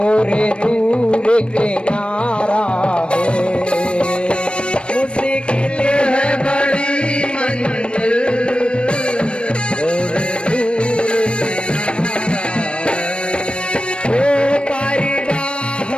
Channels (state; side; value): late; right; 0.057 ms